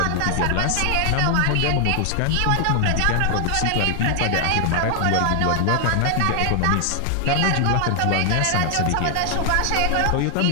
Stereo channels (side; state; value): both; different; correlation 0.00